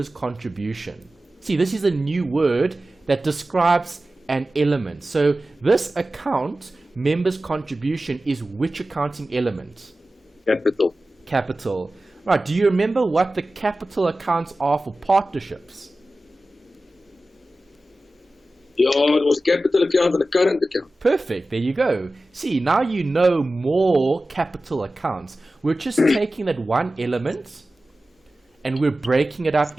contribution. See, this is a new word that describes an element. So this account, members' contribution, is which accounting element? Capital. Capital. Right, do you remember what the capital accounts are for partnerships? Yeah, it was capital account and a current account. Perfect, there you go. See, now you know more capital accounts. We're just taking that one element and we're breaking it up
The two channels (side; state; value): both; normal; correlation 0.95